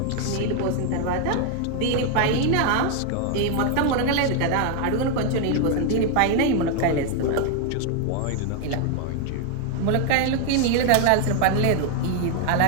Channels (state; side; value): different; both; correlation 0.00